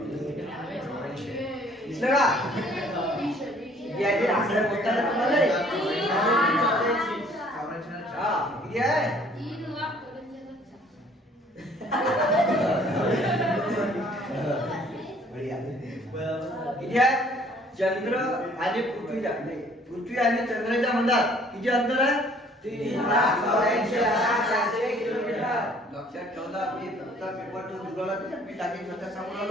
दिसलं का? याचे आकडे बोलताना तुम्हाला हा किती आहे? किती आहे? चंद्र आणि पृथ्वीच्या पृथ्वी आणि चंद्राच्या मधात किती अंतर आहे? 3,84,400 किलोमीटर. लक्षात ठेवला. मी फक्त पेपर तो जुळवला मी टाकीन स्वतः सांगून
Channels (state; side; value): normal; both; correlation 0.57